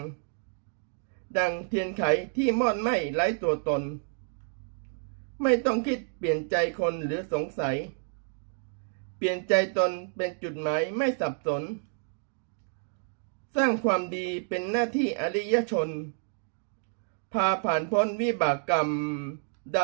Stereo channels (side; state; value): left; silent; 58 dB below the other